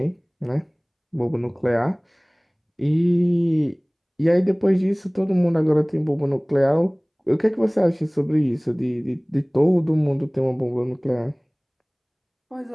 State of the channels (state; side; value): identical; both; correlation 1.00